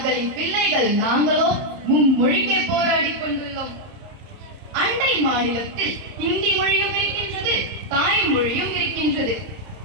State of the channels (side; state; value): left; late; 30 ms